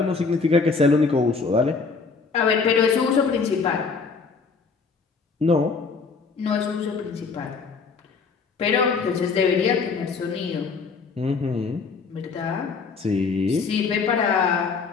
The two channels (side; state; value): right; quieter; 4.8 dB